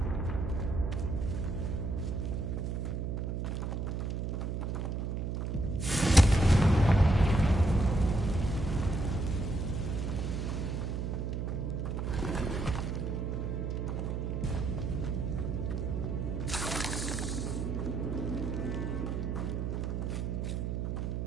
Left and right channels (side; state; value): right; noise; hum, 1 dB below the sound